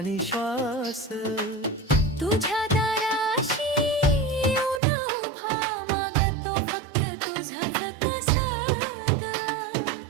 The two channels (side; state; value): left; drops out; at 4.8 s